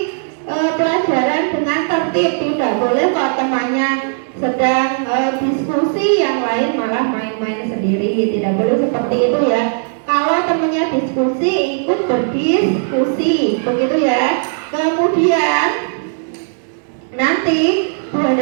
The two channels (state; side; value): silent; left; digital silence